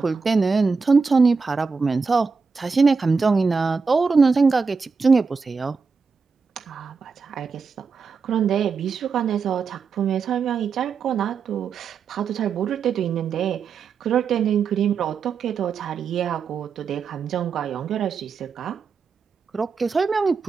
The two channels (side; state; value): left; quieter; 5.1 dB